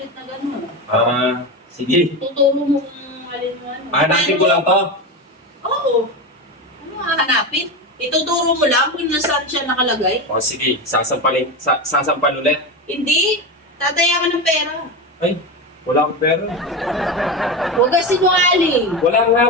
na gano'n. sige. Tuturo mo kung alin mo ano. Hanapin ko lang to. Oo. Ano hanapin? Ituturo mo lang kung nasaan siya nakalagay. Oh, sige. Sasampal ulit. Hindi. Tataya ka ng pera. Ay, wala akong pera. Huwag ka sinungaling. Wala nga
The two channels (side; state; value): both; normal; correlation 0.19